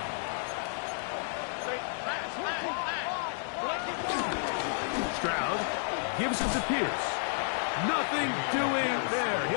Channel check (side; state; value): right; silent; digital silence